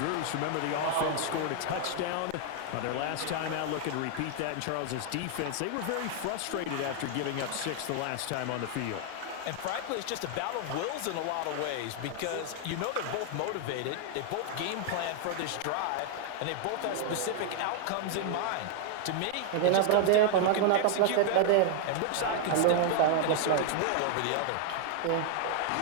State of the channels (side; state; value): both; different; correlation 0.00